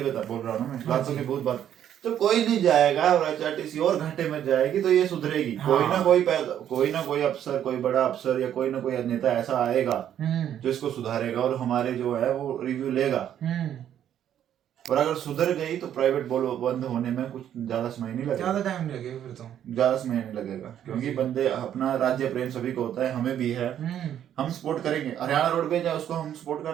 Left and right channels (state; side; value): quieter; left; 10.3 dB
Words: बोल रहा हूँ मैं, लातों के भूत बात, तो कोई नहीं जाएगा और एचआरटीसी और घाटे में जाएगी तो ये सुधरेगी। कोई ना कोई अफसर, कोई बड़ा अफसर या कोई ना कोई नेता ऐसा आएगा जो इसको सुधारेगा और हमारे जो है वो रिव्यू लेगा। और अगर सुधर गई तो प्राइवेट बंद होने में कुछ ज्यादा समय नहीं लगेगा, ज्यादा टाइम लगेगा, फिर तो ज्यादा समय नहीं लगेगा, क्योंकि बंदे अपना राज्य प्रेम सभी को होता है, हमें भी है, हम सपोर्ट करेंगे। हरियाणा रोडवेज है उसको हम सपोर्ट